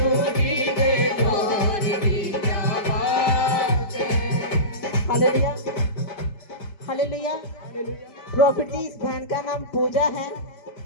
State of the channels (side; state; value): right; late; 5.0 ms